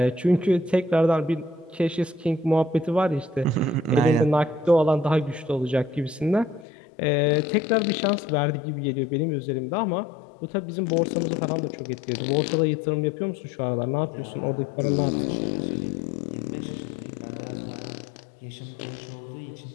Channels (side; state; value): right; drops out; at 6.7 s